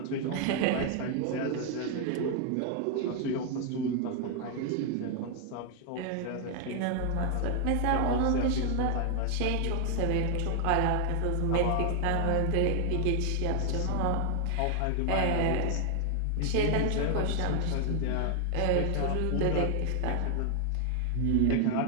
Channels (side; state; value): both; different; correlation 0.00